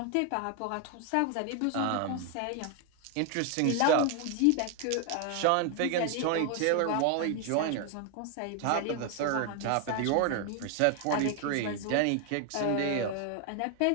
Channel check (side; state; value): both; different; correlation 0.01